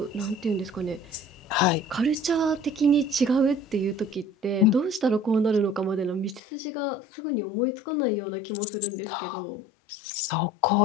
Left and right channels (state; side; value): drops out; right; at 6.4 s